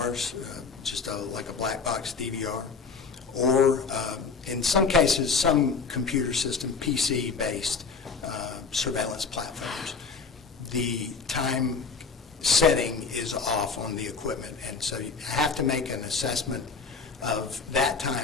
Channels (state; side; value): quieter; right; 5.0 dB